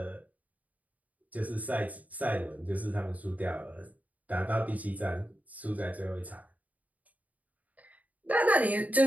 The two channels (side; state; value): left; late; 0.074 ms